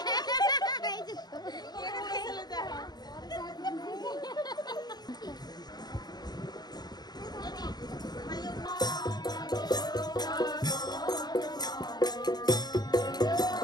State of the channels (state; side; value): late; right; 0.20 ms